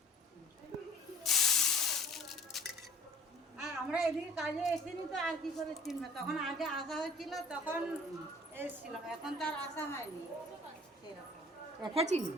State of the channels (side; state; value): both; normal; correlation 0.49